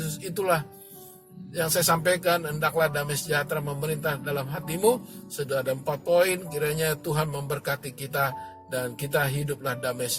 itulah yang saya sampaikan. Hendaklah damai sejahtera memerintah dalam hatimu. Sudah ada 4 poin. Kiranya Tuhan memberkati kita dan kita hiduplah damai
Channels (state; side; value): identical; both; correlation 1.00